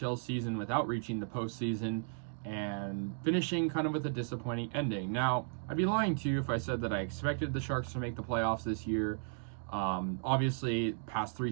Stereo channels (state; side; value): silent; left; digital silence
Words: season without reaching the postseason and finishing kind of with a disappointing ending. Now, I'd be lying to you if I said that I expected the Sharks to make the playoffs this year. Obviously, past